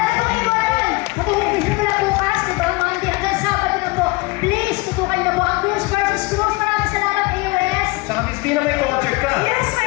pong iwanan. Matulungin mo na bukas, di ba? Monday hanggang Sabado na po. Please, tutukan na po ang Cruz versus Cruz. Maraming salamat, AOS. Saka Miss Vina, may concert ka. Yes,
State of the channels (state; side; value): quieter; right; 24.5 dB